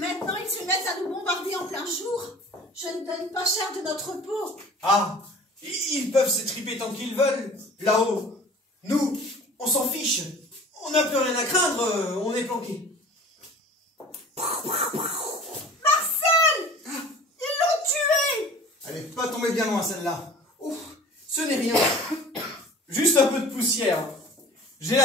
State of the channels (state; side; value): normal; both; correlation 0.44